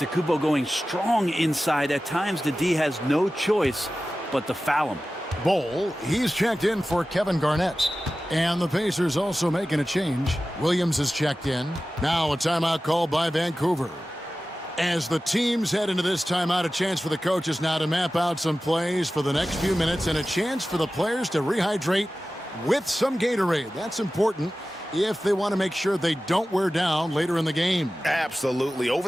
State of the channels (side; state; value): both; normal; correlation 0.95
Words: going strong inside. At times, the D has no choice but to foul him. Bowl, he's checked in for Kevin Garnett. And the Pacers also making a change. Williams is checked in. Now a timeout called by Vancouver. As the teams head into this timeout, a chance for the coaches now to map out some plays for the next few minutes and a chance for the players to rehydrate with some Gatorade. That's important if they want to make sure they don't wear down later in the game. Absolutely. Over